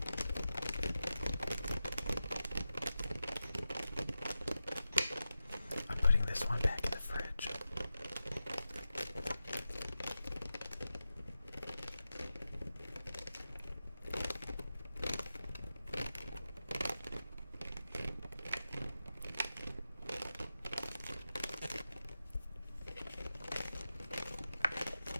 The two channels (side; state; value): both; inverted; correlation -0.92